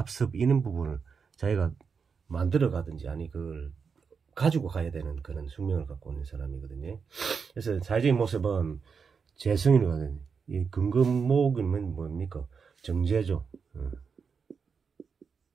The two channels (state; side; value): quieter; left; 5.8 dB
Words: 이런 부분을 자기가 만들어 가든지 아니 그걸 가지고 가야 되는 그런 숙명을 갖고 있는 사람이거든요. 그래서 사회적인 모습은 재성이거든요. 이 근검목이면 뭡니까? 정제죠.